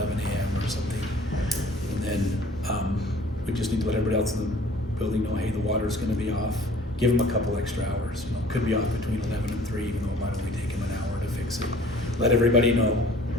a.m. or something. And then, we just need to let everybody else in the building know, hey, the water's gonna be off, give them a couple extra hours, could be off between 11 and 3, even though it might only take them an hour to fix it. Let everybody know.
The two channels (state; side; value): normal; both; correlation 0.52